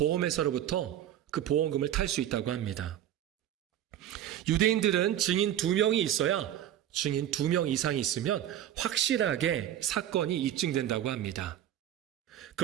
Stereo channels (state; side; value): quieter; left; 11.3 dB